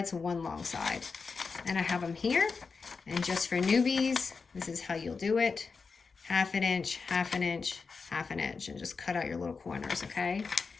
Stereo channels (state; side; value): quieter; right; 4.8 dB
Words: 1 long side. And I have them here. And just for newbies, this is how you'll do it. 1/2 inch, 1/2 inch, 1/2 inch, and just cut out your little corners, okay?